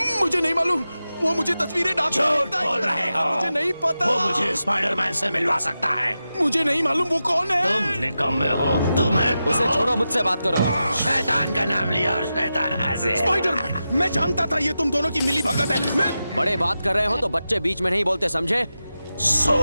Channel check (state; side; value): inverted; both; correlation -0.91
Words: मुझे नहीं मालूम। वो मुझे तस्वीरें झूठ बोल रहे हो। मुझे नहीं पता। वो मुझे स्पाइडरमैन से मिलवा सकता है। मुझे नहीं मालूम वो कौन है। तुम निकम्मे हो। तुम्हें उसे छोड़ो, मुझसे बात करो। शैतान का नाम लिया और शैतान हंसे। स्पाइडरमैन, मैं जानता था ये तुम दोनों की मिली भगत है। मैं बड़े बात कर रहे हो तो बच्चे बीच में नहीं बोलते, समझे?